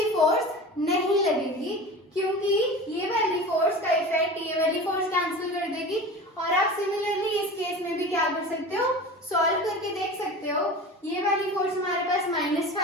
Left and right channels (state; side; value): normal; both; correlation 0.34